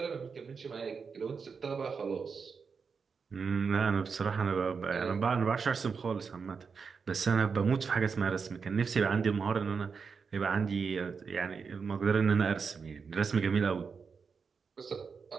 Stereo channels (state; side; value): quieter; left; 5.5 dB